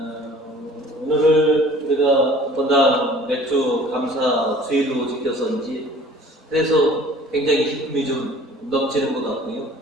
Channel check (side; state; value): both; normal; correlation 0.49